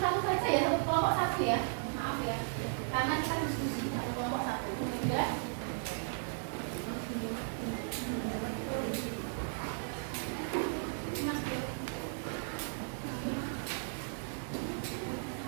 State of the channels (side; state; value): left; silent; digital silence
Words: saja ya, satu kelompok satu ya. Maaf ya, karena kita diskusi satu kelompok satu. Ya.